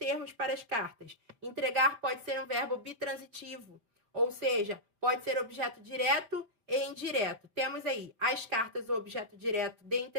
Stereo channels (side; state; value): left; late; 4.7 ms